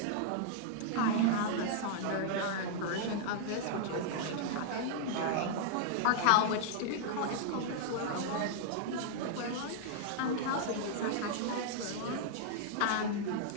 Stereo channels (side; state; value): both; different; correlation -0.01